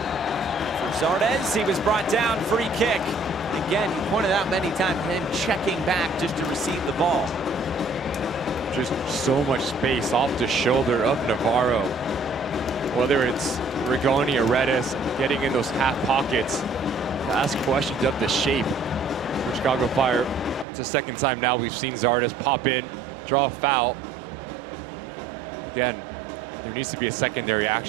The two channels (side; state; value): left; drops out; at 20.7 s